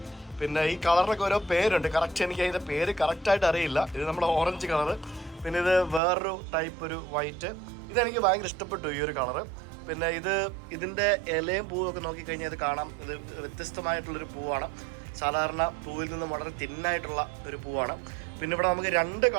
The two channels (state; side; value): drops out; left; at 6.0 s